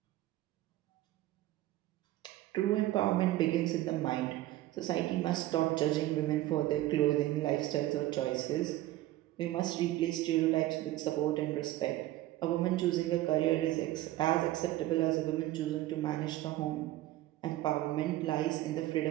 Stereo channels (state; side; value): quieter; left; 15.6 dB